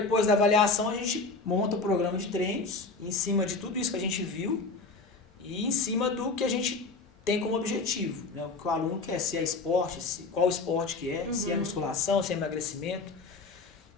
da avaliação a gente monta o programa de treinos em cima de tudo isso que a gente viu e em cima do que a gente tem como objetivo, né? O que o aluno quer, se é esporte, qual esporte que é, se é musculação, se é emagrecimento.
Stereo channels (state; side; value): quieter; right; 3.9 dB